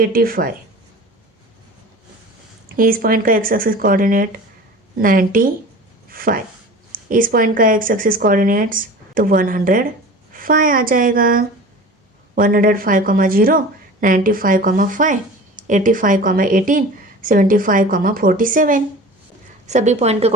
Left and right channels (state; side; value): normal; both; correlation 0.38